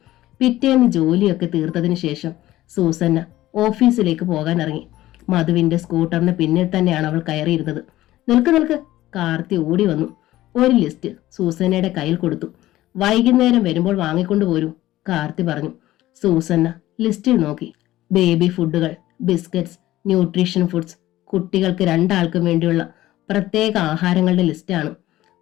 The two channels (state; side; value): quieter; right; 15.6 dB